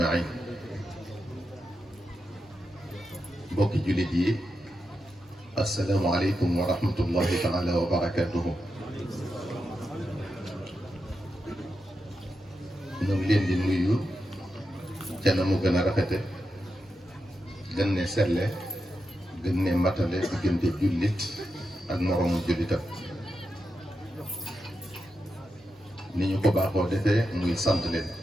بوكي جلدي، السلام عليكم ورحمة الله تعالى وبركاته. ñoo ngi leen di nuyu ca na mu gën a rafete gën ne selle gën ne matale diggante jullit ak moroomu jullitam. ni ñu ko baaxoo defee muy sant leen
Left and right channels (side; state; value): both; normal; correlation 0.88